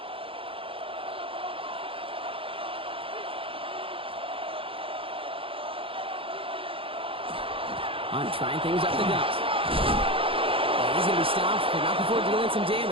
On trying things up the gut. He's going to be stopped, but not before dealing some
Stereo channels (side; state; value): left; late; 0.26 ms